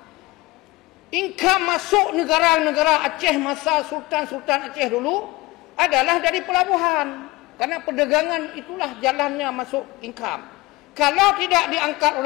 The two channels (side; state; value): right; quieter; 21.3 dB